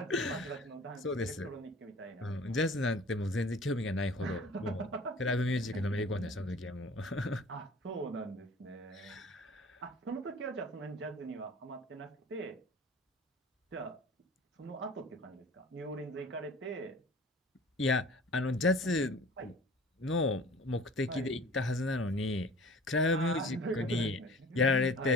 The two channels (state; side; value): normal; both; correlation 0.45